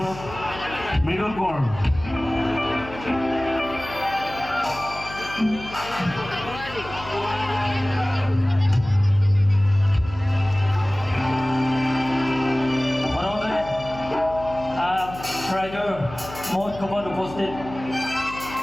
মৃদুল কোঁৱৰ। ৰাইজৰ মহোৎসৱত উপস্থিত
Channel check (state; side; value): noise; left; hum, 14 dB below the sound